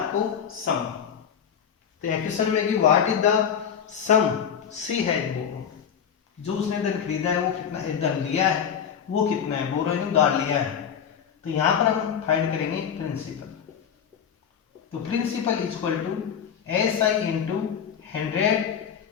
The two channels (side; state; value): right; quieter; 7.9 dB